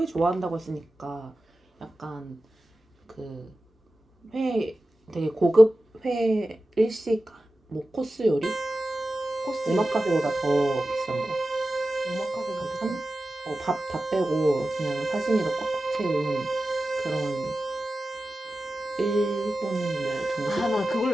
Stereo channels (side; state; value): both; normal; correlation 0.94